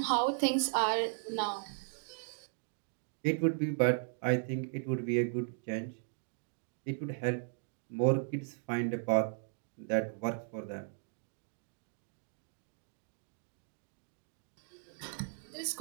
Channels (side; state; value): left; silent; digital silence